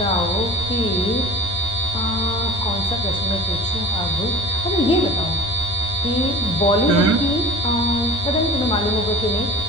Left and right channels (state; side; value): normal; both; correlation 0.41